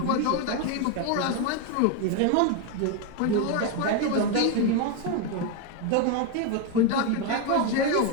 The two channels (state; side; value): different; both; correlation 0.02